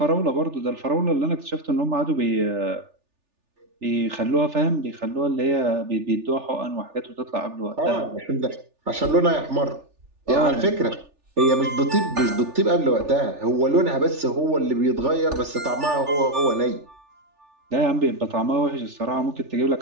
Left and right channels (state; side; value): late; left; 3.4 ms